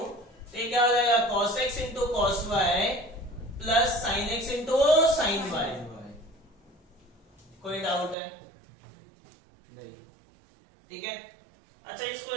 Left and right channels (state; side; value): drops out; left; at 8.2 s